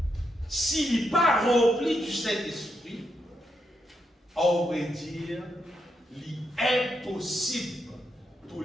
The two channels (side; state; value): both; normal; correlation 0.81